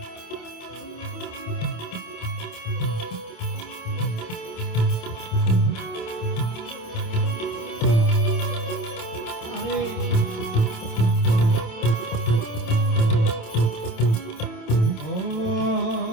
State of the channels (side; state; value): right; late; 27 ms